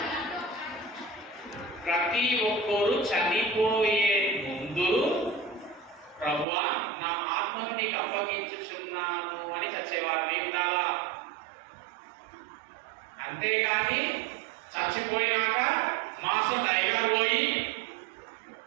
ప్రతి ఒక్కరు చనిపోయే ముందు ప్రభువా నా ఆత్మను నీకు అప్పగించుచున్నాను అని చచ్చేవారిని ఉండాలా. అంతేగాని చచ్చిపోయినాక మాసం టైగర్ పోయి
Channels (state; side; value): drops out; left; at 6.5 s